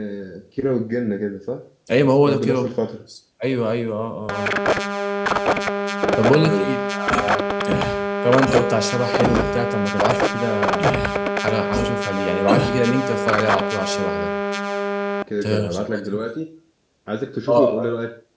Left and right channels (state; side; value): identical; both; correlation 1.00